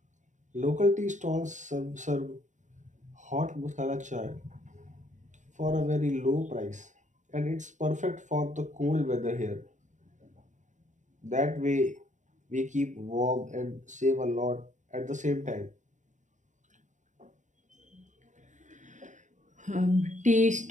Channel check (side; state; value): left; late; 0.36 ms